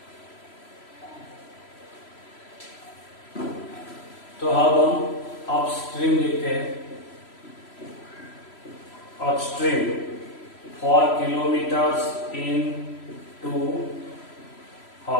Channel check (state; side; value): late; right; 3.0 ms